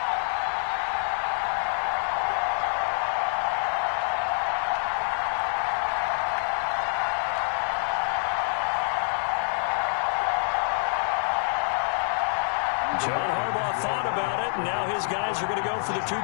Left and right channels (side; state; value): right; silent; digital silence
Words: John Harbaugh thought about it, and now his guys are going to go for the